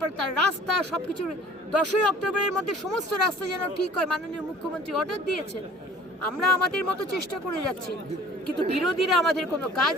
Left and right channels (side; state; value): both; normal; correlation 0.50